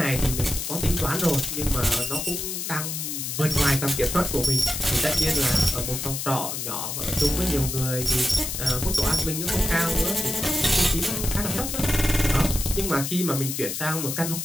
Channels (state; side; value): noise; left; hiss, 4 dB below the sound